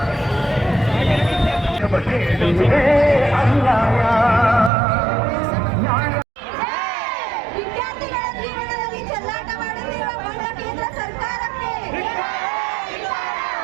ವಿದ್ಯಾರ್ಥಿಗಳ ಜೀವನದಲ್ಲಿ ಚೆಲ್ಲಾಟ ಮಾಡುತ್ತಿರುವ ಬಡ ಕೇಂದ್ರ ಸರ್ಕಾರಕ್ಕೆ,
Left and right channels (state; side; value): drops out; left; at 4.7 s